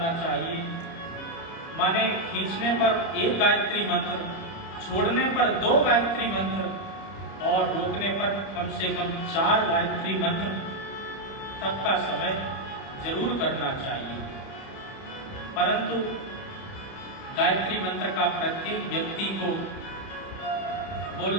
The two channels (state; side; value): late; right; 30 ms